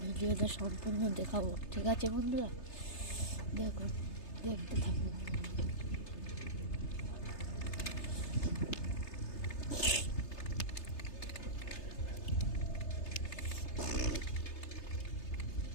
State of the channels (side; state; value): right; late; 3.3 ms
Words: ভিডিওটা সম্পূর্ণ দেখাবো, ঠিক আছে বন্ধুরা? দেখুন, দেখতে থাকুন।